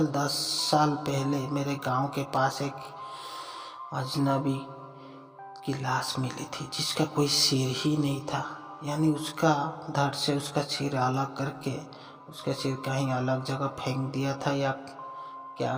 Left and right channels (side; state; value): both; identical; correlation 1.00